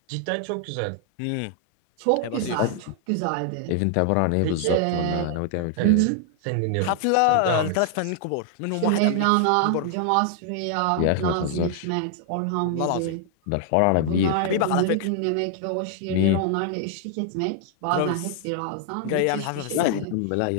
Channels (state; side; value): different; both; correlation 0.00